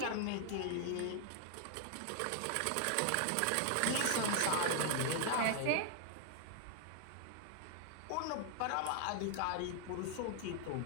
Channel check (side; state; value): both; different; correlation 0.00